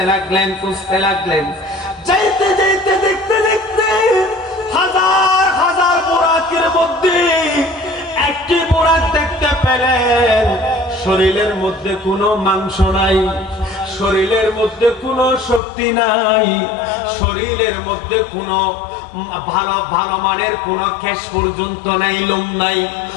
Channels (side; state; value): right; drops out; at 15.6 s